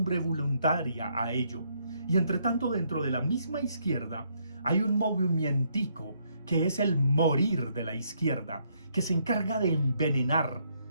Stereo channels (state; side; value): inverted; both; correlation -0.72